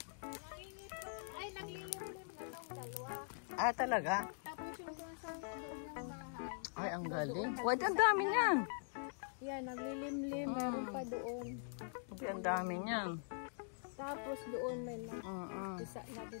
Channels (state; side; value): silent; right; digital silence